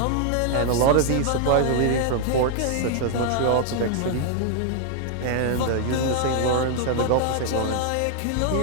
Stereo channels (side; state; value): both; different; correlation 0.00